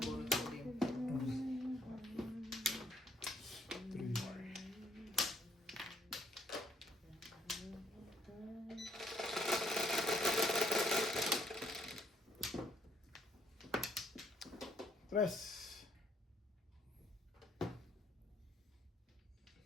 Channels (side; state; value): both; normal; correlation 0.67